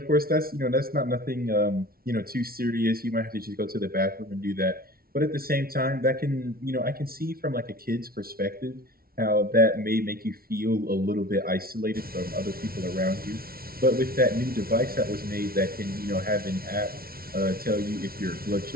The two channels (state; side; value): late; left; 0.44 ms